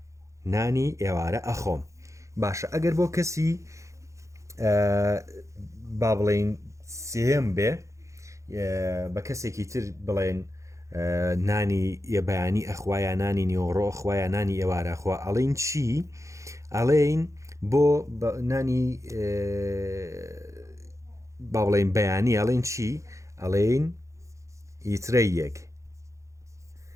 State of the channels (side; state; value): left; late; 0.15 ms